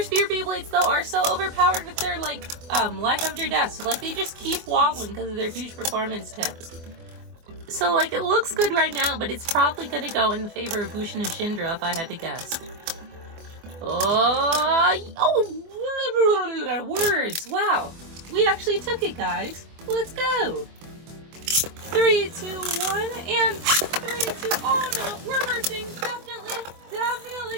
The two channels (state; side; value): late; left; 24 ms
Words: Beyblades, though, are so overpowered with their, like, life after death, so, like, they just keep wobbling because of their huge performance tips. So, like, it looks good right now, but it's probably going to go in the favor of Bushin Ashindra if I had to guess. Oh, words. Wow. We actually took it, guys. Let's go. 3, 2, 1, and 3, 2, oh no, we're bursting. Definitely